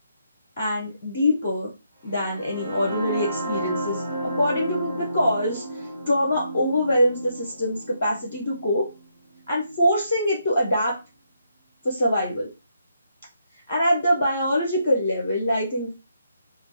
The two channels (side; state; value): both; inverted; correlation -0.77